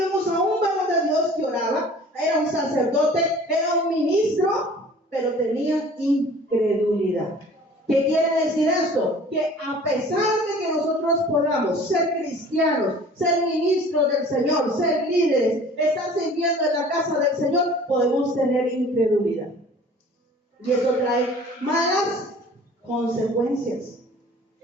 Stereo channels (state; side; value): normal; both; correlation 0.47